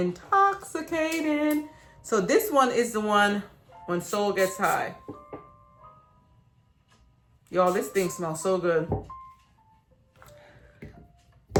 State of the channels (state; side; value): identical; both; correlation 1.00